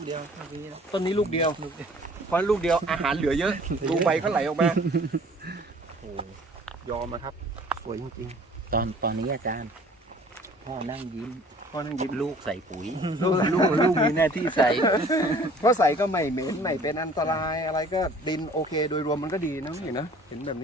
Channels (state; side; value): normal; both; correlation 0.51